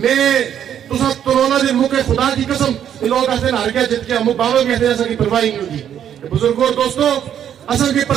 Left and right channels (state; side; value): quieter; left; 9.6 dB